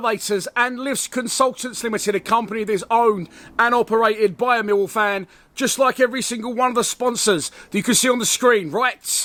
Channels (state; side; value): identical; both; correlation 1.00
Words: and Lifts Consultants Limited, a company that is owned and operated by a Millwall fan, just like every single one of the sponsors that you can see on the screen,